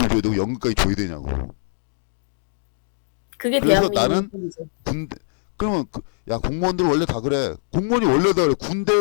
줘야 되고 연금까지 줘야 되냐고. 그게 그래서 대한민국의 나는 일본이죠. 그러면 야 공무원들 원래 다 그래. 공무원이 원래 다 그래.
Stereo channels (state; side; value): silent; right; digital silence